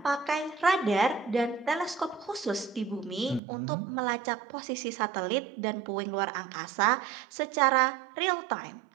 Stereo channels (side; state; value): left; drops out; at 3.4 s